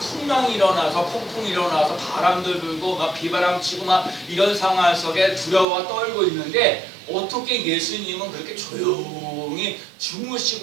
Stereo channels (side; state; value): left; drops out; at 5.7 s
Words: 일어나서 폭풍이 일어나서 바람도 불고 막 비바람 치고 막 이런 상황 속에 두려워 떨고 있는데 어떻게 예수님은 그렇게 조용히